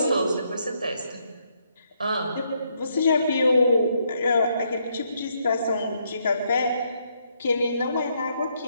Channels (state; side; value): inverted; both; correlation -0.75